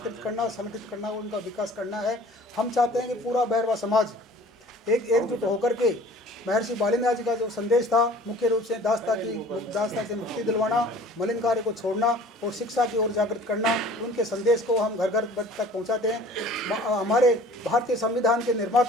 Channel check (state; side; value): normal; both; correlation 0.48